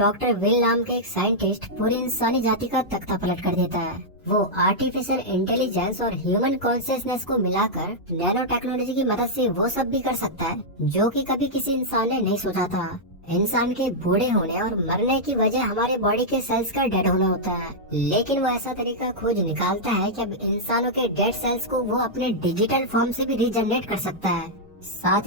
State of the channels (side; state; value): both; normal; correlation -0.07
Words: विल नाम के एक साइंटिस्ट पूरी इंसानी जाति का तख्ता पलट कर देता है। वो आर्टिफिशियल इंटेलिजेंस और ह्यूमन कॉन्शियसनेस को मिलाकर नैनो टेक्नोलॉजी की मदद से वो सब भी कर सकता है जो कि कभी किसी इंसान ने नहीं सोचा था। इंसान के बूढ़े होने और मरने की वजह हमारे बॉडी के सेल्स का डेड होना होता है, लेकिन वो ऐसा तरीका खोज निकालता है कि अब इंसानों के डेड सेल्स को वो अपने डिजिटल फॉर्म से भी रीजनरेट कर सकता है।